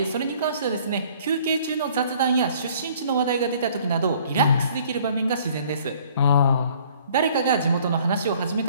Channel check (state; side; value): inverted; both; correlation -0.56